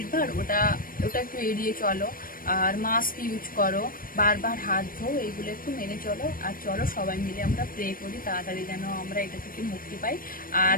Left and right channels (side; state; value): right; late; 0.41 ms